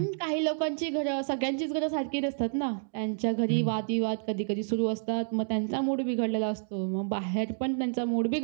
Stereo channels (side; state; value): left; silent; digital silence